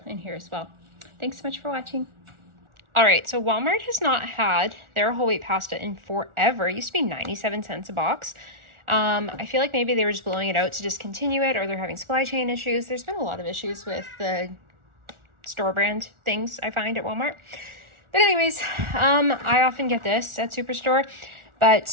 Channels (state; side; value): late; left; 1.4 ms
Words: in here as well. Thanks so much for watching. All right, so Walmart has not had their whole wheat pasta in forever. It used to be 97 cents a box. I feel like maybe they were just blowing it out to discontinue it, or they're having supply chain issues. There's been a lot of issues with the store brand things I find at Walmart. But anyways, I often get this at Superstore,